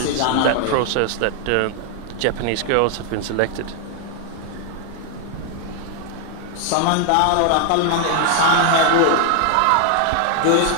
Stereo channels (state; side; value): different; both; correlation 0.00